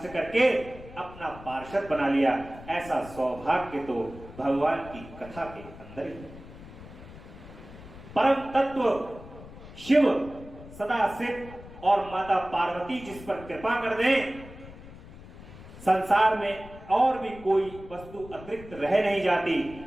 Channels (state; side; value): noise; left; rumble, 17 dB below the sound